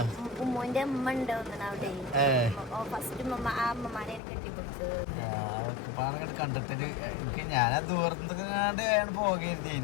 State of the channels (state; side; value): drops out; right; at 4.2 s